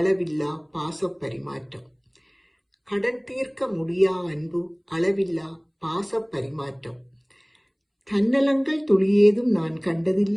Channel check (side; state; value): both; identical; correlation 1.00